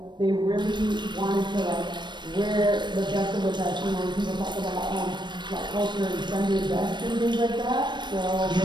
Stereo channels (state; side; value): late; left; 0.22 ms